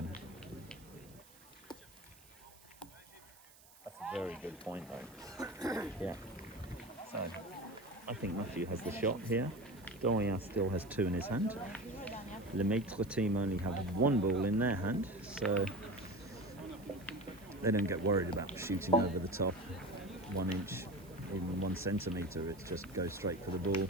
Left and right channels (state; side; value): noise; right; hiss, 24 dB below the sound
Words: That's a very good point, though. Yeah. So, I think Matthew has the shot here. Dorian still has 2 in his hand. Le Maitre team only have 1 ball in their hand, so they don't get worried about shooting over the top 1 inch even 1 centimetre, it just goes straight for the ball.